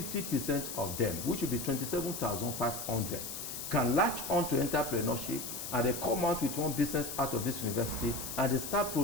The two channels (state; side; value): noise; left; hiss, 7 dB below the sound